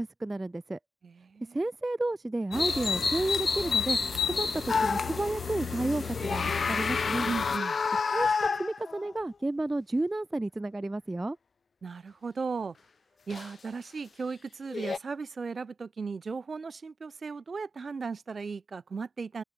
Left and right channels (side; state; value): both; normal; correlation 0.89